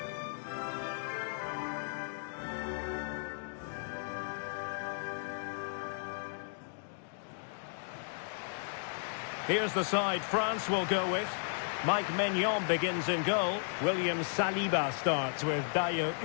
Here's the side France will go with. Mike Maignan begins in goal. William Saliba starts with Dayo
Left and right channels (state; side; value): silent; right; digital silence